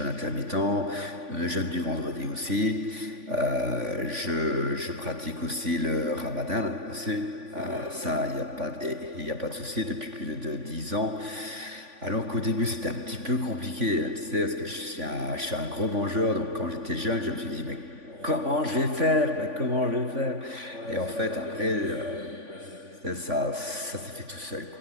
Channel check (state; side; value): late; left; 3.5 ms